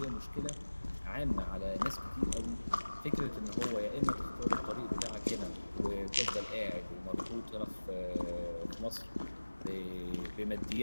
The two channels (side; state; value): both; inverted; correlation -1.00